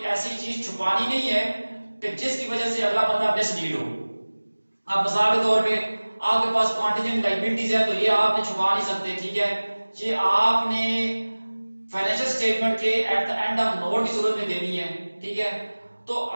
ایسی چیز چھپانی نہیں ہے کہ جس کی وجہ سے اگلا بندہ مس لیڈ ہو۔ اب مثال کے طور پہ آپ کے پاس کانٹینجنٹ لائبلٹیز ہے تو یہ آپ نے چھپا نہیں سکتے، ٹھیک ہے؟ یہ آپ نے فائنینشیل سٹیٹمنٹ کے at the end of note کی صورت میں دینی ہے، ٹھیک ہے؟ تو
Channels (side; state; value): both; inverted; correlation -1.00